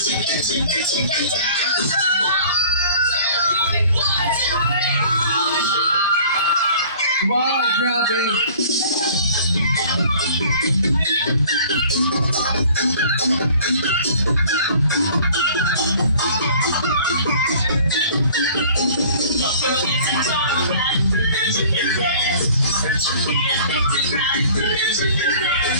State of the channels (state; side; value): inverted; both; correlation -0.49